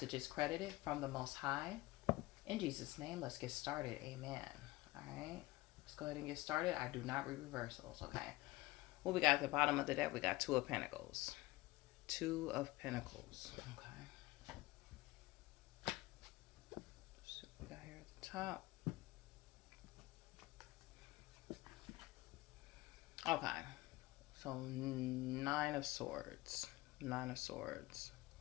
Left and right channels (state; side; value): quieter; right; 20.1 dB